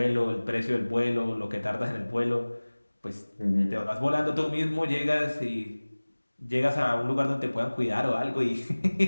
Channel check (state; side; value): inverted; both; correlation -1.00